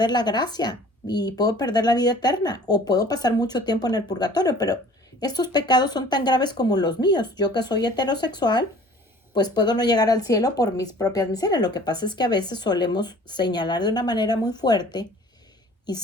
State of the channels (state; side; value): normal; both; correlation 0.49